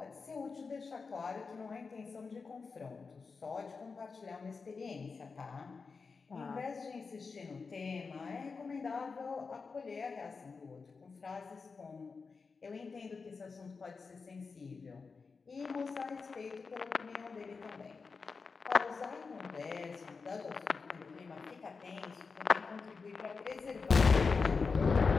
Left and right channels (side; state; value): right; quieter; 4.8 dB